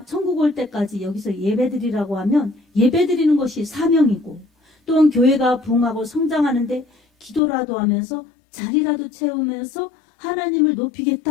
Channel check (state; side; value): drops out; right; at 7.4 s